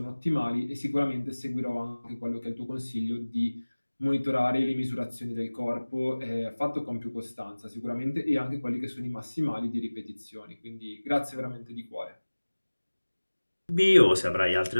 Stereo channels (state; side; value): inverted; both; correlation -1.00